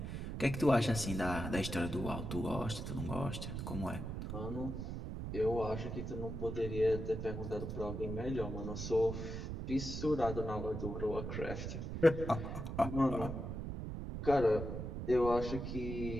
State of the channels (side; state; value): right; noise; rumble, 5 dB below the sound